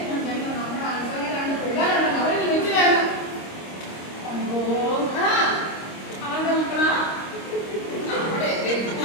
നമ്മുടെ അനുസരണ പിള്ളേരുണ്ട്, അവരിൽ വെച്ച് വേണം. അവന്റെ മക്കളാ അവിടെ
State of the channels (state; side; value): late; right; 26 ms